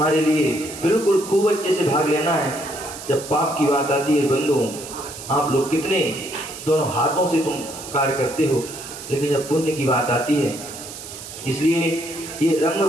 लिए बिल्कुल खूब अच्छे से भाग लेना है। जब पाप की बात आती है बंधु, आप लोग कितने दोनों हाथों से तुम कार्य करते हो, लेकिन जब पुण्य की बात आती है, इसलिए ये रंग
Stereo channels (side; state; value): right; noise; hiss, 12 dB below the sound